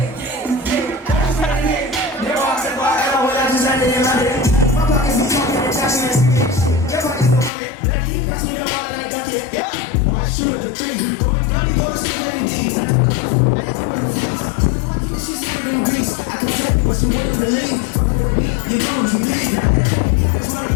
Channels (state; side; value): drops out; right; at 7.5 s